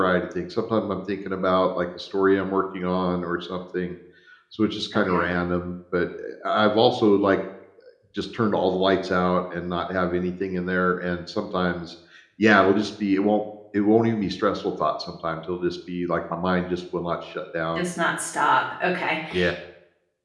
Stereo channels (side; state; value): both; identical; correlation 1.00